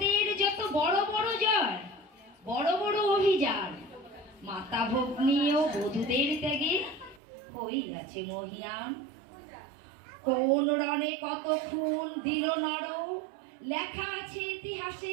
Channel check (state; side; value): drops out; left; at 7.2 s